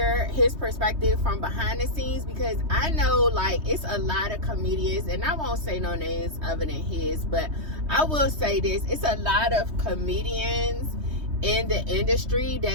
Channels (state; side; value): late; left; 3.2 ms